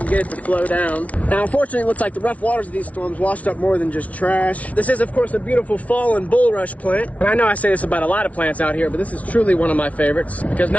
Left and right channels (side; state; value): right; late; 0.067 ms